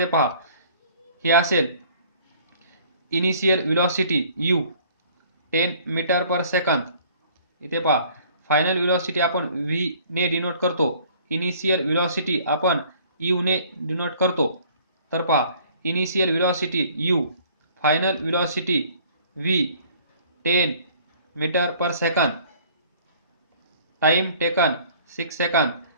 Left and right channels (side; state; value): both; inverted; correlation -0.55